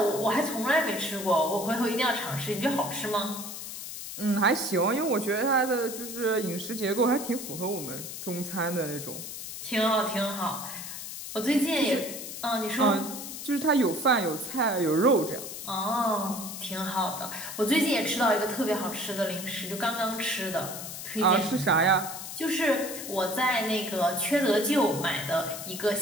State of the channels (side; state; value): left; noise; hiss, 9 dB below the sound